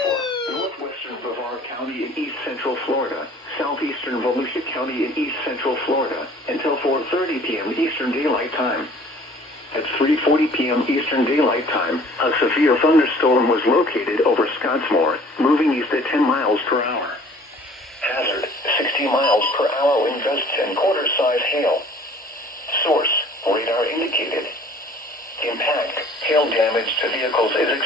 for northwestern Brevard County in east central Florida, southeastern Volusia County in east central Florida, until 4:30 p.m. Eastern Daylight Time. At 3:40 p.m. Eastern Daylight Time, a severe thunderstorm was located over Scottsmore, moving east at 10 miles per hour. Hazard, 60 miles per hour wind gusts and quarter-size hail. Source, radar indicated. Impact, hail damage to vehicles is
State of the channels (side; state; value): both; normal; correlation 0.51